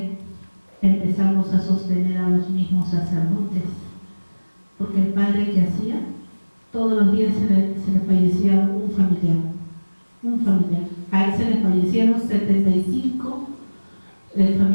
empezamos a sostener a los mismos sacerdotes, porque el padre que hacía, todos los días se le fallecía un familiar. A él se le fallecieron 75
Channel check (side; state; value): both; inverted; correlation -1.00